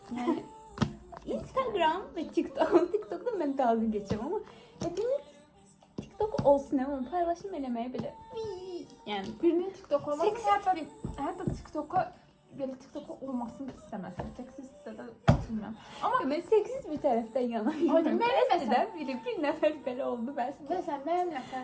Yani Instagram ve TikTok. TikTok'ta ben dalga geçeceğim ama hepimiz TikTok olsun ama paylaşım eləməyə belə yani Birinin TikTok olmasını seksist hətta TikTok'a belə TikTok'a olmasını istəməsin. Seksistsə də bilmirəm. Amma ben seksiz bir taraftan yanayım. Ay, mən Eskiden bir nefer belə oldu ben size. Məsələn, mənim nəfər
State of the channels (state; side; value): identical; both; correlation 1.00